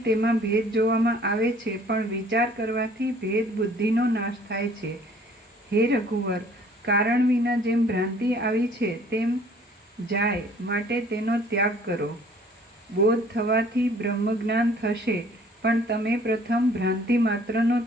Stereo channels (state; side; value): normal; both; correlation 0.55